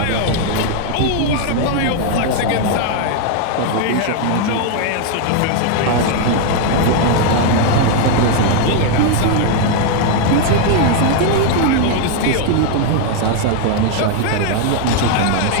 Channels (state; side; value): different; both; correlation 0.00